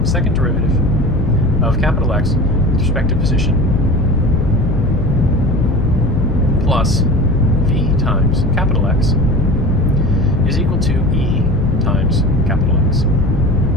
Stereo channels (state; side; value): noise; left; rumble, 4 dB below the sound